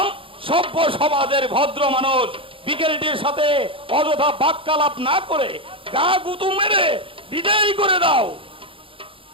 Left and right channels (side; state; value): left; late; 0.26 ms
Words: সভ্য সমাজের ভদ্র মানুষ। বিকেলটির সাথে অযথা বাক্যালাপ না করে গা গুতু মেরে বিদায় করে দাও।